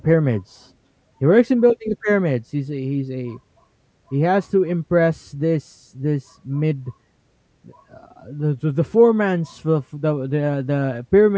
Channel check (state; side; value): identical; both; correlation 1.00